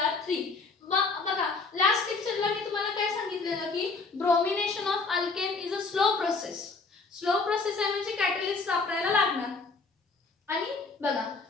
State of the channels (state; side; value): quieter; right; 4.2 dB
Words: बघा लास्ट लेक्चरला मी तुम्हाला काय सांगितलेलं की bromination of alkane is a slow process. Slow process आहे म्हणजे कॅटलिस्ट वापरायला लागणार. आणि बघा